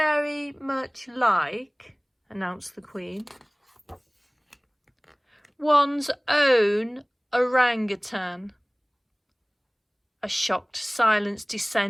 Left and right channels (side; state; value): both; identical; correlation 1.00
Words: much like, announced the Queen, one's own orangutan. A shocked silence